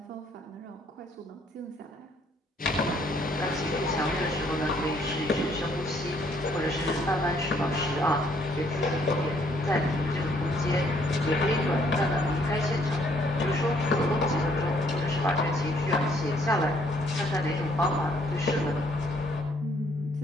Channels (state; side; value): normal; both; correlation 0.66